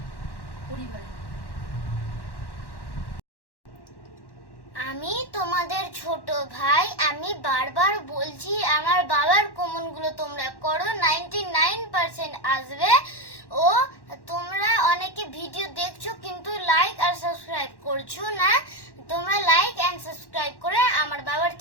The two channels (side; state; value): right; late; 1.1 ms